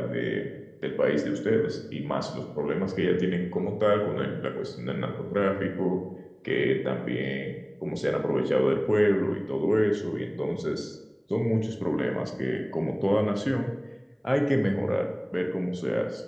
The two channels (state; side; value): identical; both; correlation 1.00